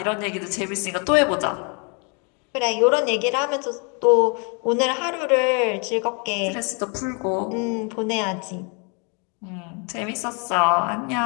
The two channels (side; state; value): right; quieter; 35.0 dB